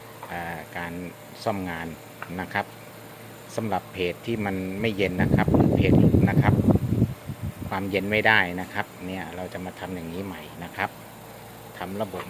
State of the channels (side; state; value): both; identical; correlation 1.00